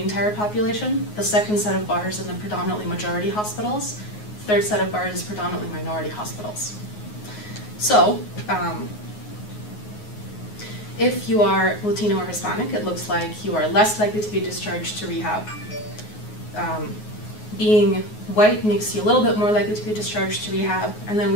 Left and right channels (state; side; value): late; right; 9.5 ms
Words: population. The second set of bars in the predominantly majority hospitals. The third set of bars is predominantly minority hospitals. So, if you are Latino or Hispanic, it looks like you are less likely to be discharged to rehab. Being white makes you a little bit more likely to be discharged to rehab, and then